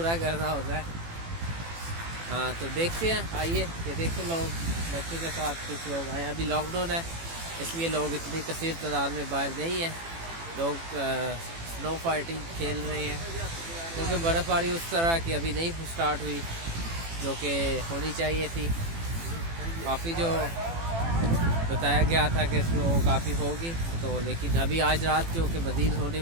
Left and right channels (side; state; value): left; late; 18 ms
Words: करना होता है। हाँ, तो देखते हैं, आइए। ये देखिए, लोग बच्चों के साथ कुछ लोग आए। अभी लॉकडाउन है, इसलिए लोग इतनी कसीर तादाद में बाहर नहीं है। लोग स्नो फाइटिंग खेल रहे हैं, क्योंकि बर्फ़बारी उस तरह की अभी नहीं स्टार्ट हुई जो कि होनी चाहिए थी। काफ़ी जो बताया गया था कि स्नो काफ़ी होगी, तो लेकिन अभी आज रात जो कि मज़ीद होने